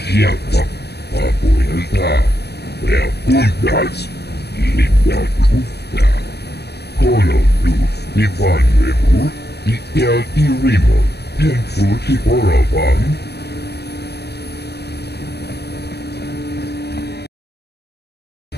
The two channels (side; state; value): right; late; 0.48 ms